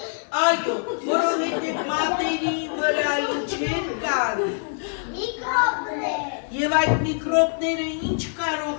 Այո, որովհետև մատերի վրա ինչեր կան։ Միկրոբներ։ Եվ այդ միկրոբները ինչ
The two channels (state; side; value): silent; right; digital silence